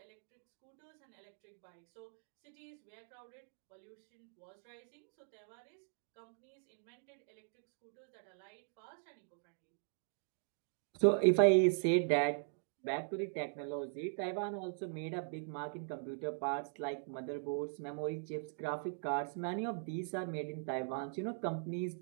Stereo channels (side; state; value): left; silent; digital silence